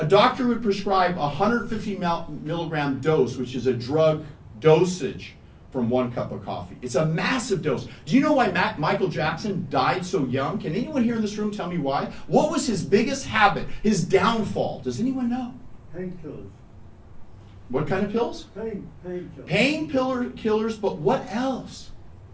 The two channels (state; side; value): identical; both; correlation 1.00